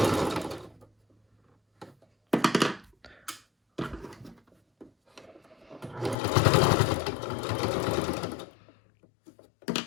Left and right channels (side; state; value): right; drops out; at 6.2 s